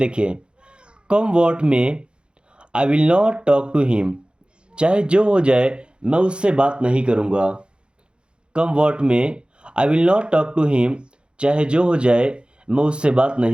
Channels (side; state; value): left; late; 0.054 ms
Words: come what may I will not talk to him, चाहे जो हो जाए मैं उससे बात नहीं करूँगा। Come what may I will not talk to him, चाहे जो हो जाए मैं उससे बात